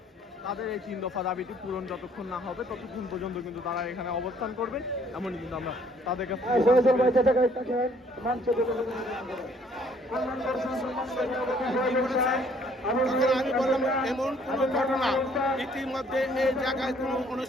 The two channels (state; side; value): normal; both; correlation 0.62